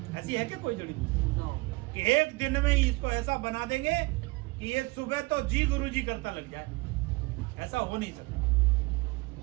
ऐसी है क्या कोई जड़ी बूटी कि एक दिन में ही इसको ऐसा बना देंगे कि ये सुबह तो जी गुरु जी करता लग जाए? ऐसा हो नहीं सकता।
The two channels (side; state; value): left; quieter; 24.4 dB